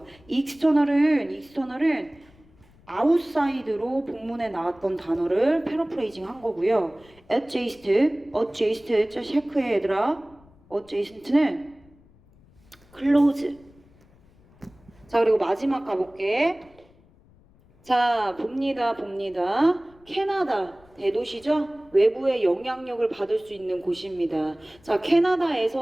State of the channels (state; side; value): noise; left; rumble, 29 dB below the sound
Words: 익스터널은 아웃사이드로 본문에 나왔던 단어를 패러프레이징 한 거고요. adjacent 체크해 얘들아. adjacent는 close. 자, 그리고 마지막 가볼게. 자, 봅니다. 캐나다 대도시죠? 외부의 영향력을 받을 수 있는 곳입니다. 자,